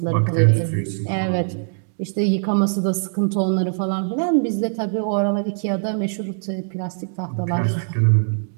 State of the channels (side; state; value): left; silent; digital silence